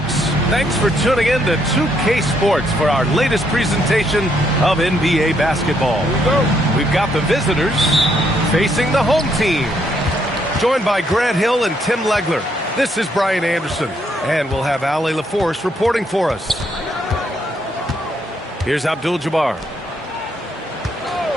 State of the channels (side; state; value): both; normal; correlation 0.73